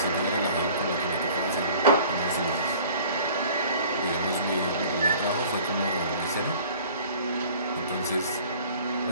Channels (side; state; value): both; inverted; correlation -0.49